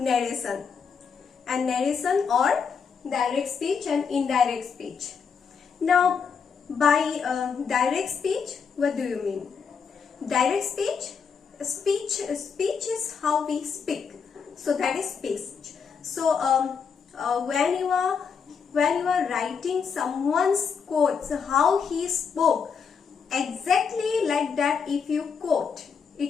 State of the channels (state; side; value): quieter; right; 6.2 dB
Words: and narration or direct speech and indirect speech. Now by direct speech, what do you mean? Direct speech is how we speak, so that is speech. So when you are writing someone's quotes, how he spoke, exactly like that, if you quote,